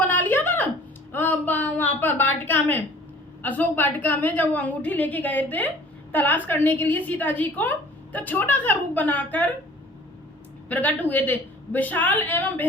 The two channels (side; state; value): both; normal; correlation 0.49